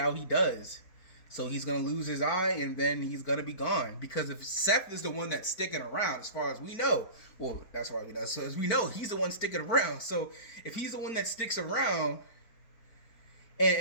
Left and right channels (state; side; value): late; right; 4.5 ms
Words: he does. So he's gonna lose his eye, and then he's gonna be gone. Because if Seth is the one that's sticking around, as far as we know, well, that's why we know. So as we know, he's the one sticking around. So if he's the one that sticks around,